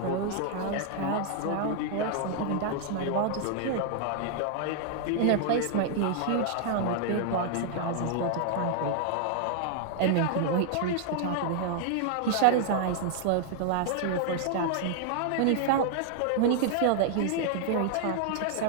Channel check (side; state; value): both; different; correlation 0.00